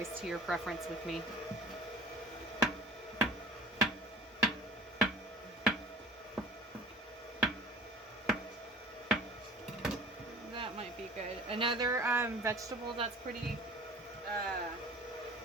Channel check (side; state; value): both; normal; correlation 0.44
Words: to your preference with me. That might be good. Another vegetable that's pretty